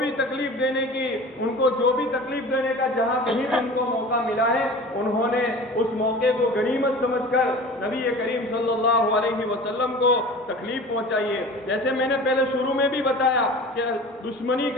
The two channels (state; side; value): normal; both; correlation 0.39